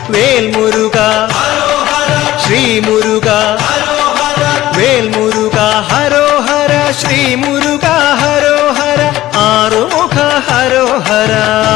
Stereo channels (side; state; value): right; quieter; 15.4 dB